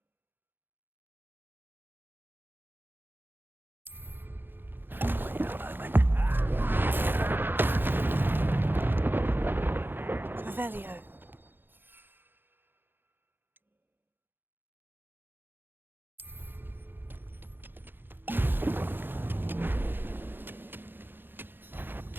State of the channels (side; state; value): left; late; 0.099 ms